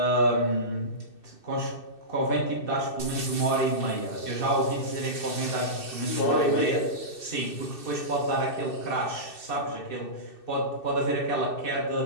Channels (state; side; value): late; right; 2.6 ms